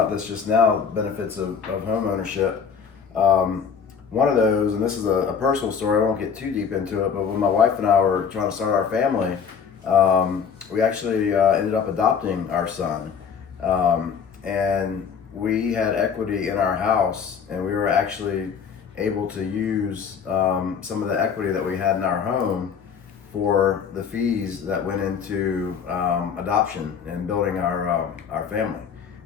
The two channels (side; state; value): right; quieter; 6.7 dB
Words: this just now. Benefits of home ownership. One of those, and this is a personal story, I won't get too deep into it, but when my wife and I were trying to start our family, we actually ended up adopting our son. And we had equity in our house, and we were actually able to use some of the equity that we had in our home for the fees that went into adoption and building our family,